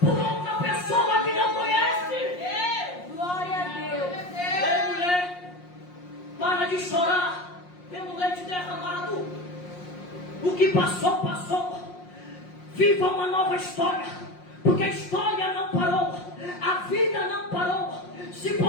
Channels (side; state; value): right; late; 5.6 ms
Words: outra pessoa que não conhece. Glória a Deus. Ei, mulher, para de chorar pelo leite derramado. O que passou, passou. Viva uma nova história, porque a história não parou, a vida não parou. Se